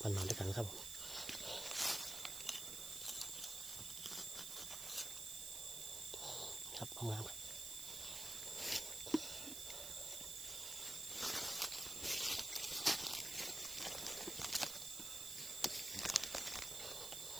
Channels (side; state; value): right; noise; hiss, 4 dB below the sound